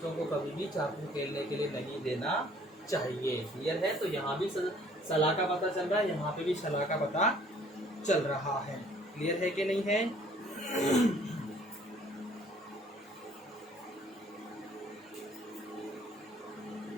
को कभी भी चाकू खेलने के लिए नहीं देना चाहिए। क्लियर है? तो यहाँ भी सलाह का पता चल रहा है, यहाँ पे भी सलाह का पता चल रहा है। क्लियर है कि नहीं है?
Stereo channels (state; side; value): normal; both; correlation 0.57